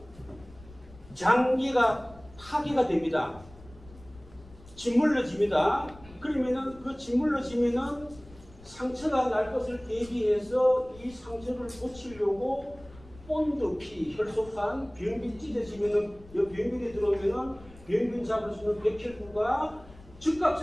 장기가 파괴가 됩니다. 짓물러집니다. 그러면은 그 짓물러지면은 상처가 날 것을 대비해서 이 상처를 고치려고 본드피, 혈소판, 병균 찢어지면은 이 병균이 들어오면은 병균 잡을 수 있는 백혈구가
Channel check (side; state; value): left; noise; rumble, 21 dB below the sound